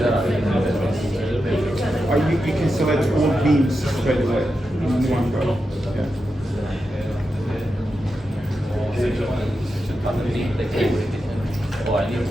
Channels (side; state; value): both; normal; correlation 0.89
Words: Or you can select all beams straight away in one go. Yeah.